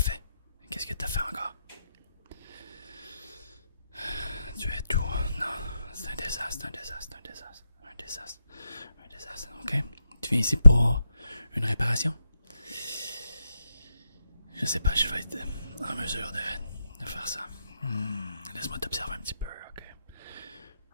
Qu'est-ce que t'as fait encore? Tu es tout. Non, c'est un désastre, un désastre, un désastre. Un désastre. Un désastre. Ok? Tu viens ici pour une réparation? Je sais pas, je vais être en mesure de faire ça. Laisse-moi t'observer un petit peu, ok?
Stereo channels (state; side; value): inverted; both; correlation -0.85